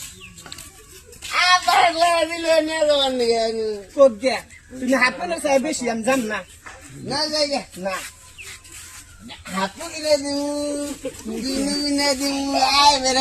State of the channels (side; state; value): both; identical; correlation 1.00